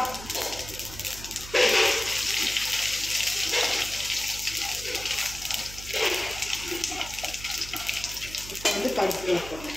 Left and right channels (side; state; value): right; noise; hum, 13 dB below the sound